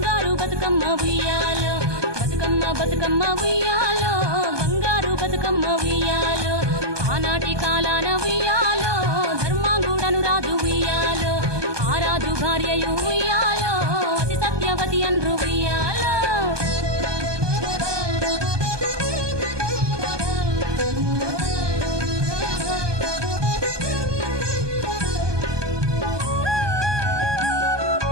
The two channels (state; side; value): late; left; 1.2 ms